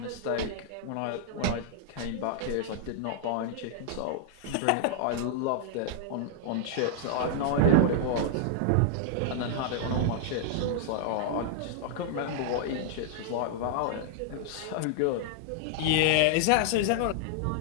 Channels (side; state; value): both; different; correlation -0.01